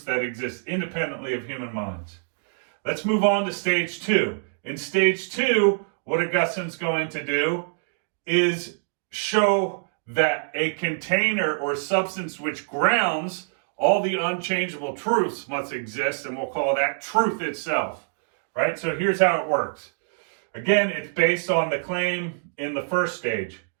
that exist independently of human minds. Let's move on to stage 2. In stage 2, what Augustine's going to do is show that a container or substance which grounds all the unchangeable truths must exist, and we'll call that truth itself, right? So here's how it works. Again, it's based on the claim in the first stage.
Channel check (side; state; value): left; silent; digital silence